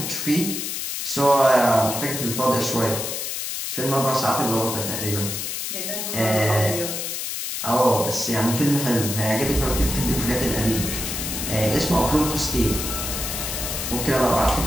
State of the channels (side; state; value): left; noise; hiss, 4 dB below the sound